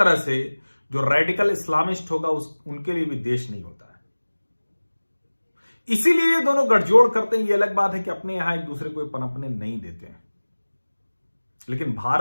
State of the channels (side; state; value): both; inverted; correlation -1.00